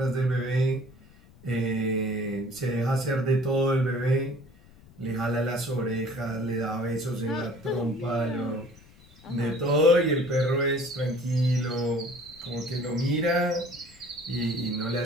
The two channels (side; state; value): left; noise; rumble, 25 dB below the sound